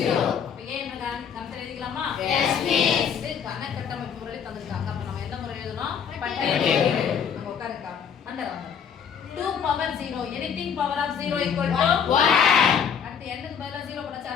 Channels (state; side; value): quieter; right; 7.5 dB